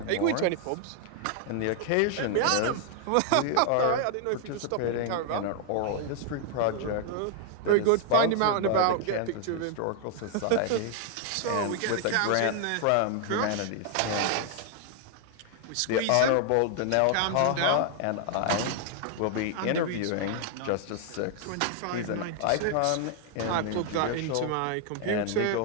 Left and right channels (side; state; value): both; different; correlation 0.00